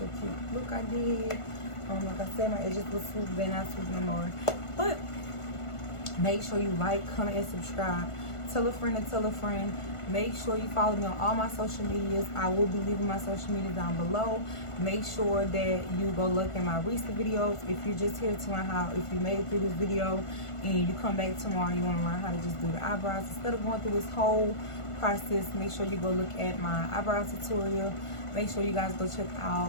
cute look I did. Like I said, my edges look swooped, they're not swooped no more. But make sure you like, comment, and subscribe. Tell a friend and tell a friend. Make sure you follow me on all my social medias. I will be leaving my social media down below. Make sure that you go look at my recent videos. If you're just here to learn how, if you made it through this video and you come back tomorrow and you want to learn how to just do the eyebrows instead of going through this whole process, make sure you go look at my eyebrow tutorial. Make sure you guys go check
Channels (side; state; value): right; late; 1.5 ms